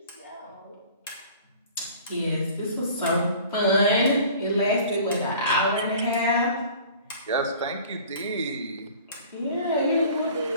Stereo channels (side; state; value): both; inverted; correlation -0.47